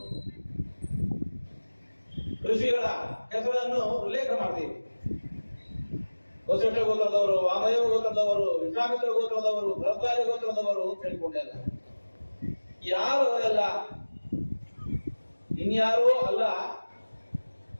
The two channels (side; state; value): both; inverted; correlation -1.00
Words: ಋಷಿಗಳ ಹೆಸರನ್ನು ಉಲ್ಲೇಖ ಮಾಡ್ತೀವಿ. ವಸಿಷ್ಠ ಗೋತ್ರದವರು, ವಾಮದೇವ ಗೋತ್ರದವರು, ವಿಶ್ವಾಮಿತ್ರ ಗೋತ್ರದವರು, ಭರದ್ವಾಜ ಗೋತ್ರದವರು ಅಂತ ಹೇಳಿಕೊಂಡೆಲ್ಲ. ಯಾರು ಅವರೆಲ್ಲ? ಇನ್ಯಾರೂ ಅಲ್ಲ,